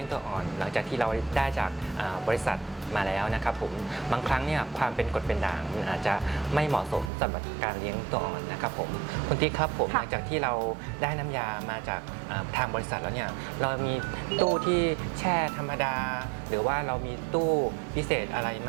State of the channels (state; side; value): drops out; left; at 7.1 s